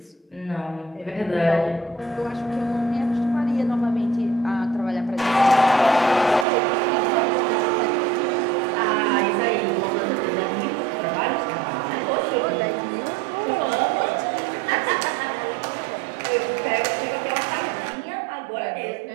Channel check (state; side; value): drops out; left; at 6.5 s